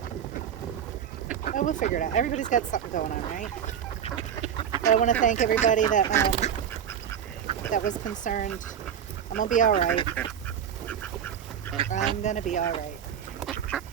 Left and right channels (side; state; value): left; quieter; 8.8 dB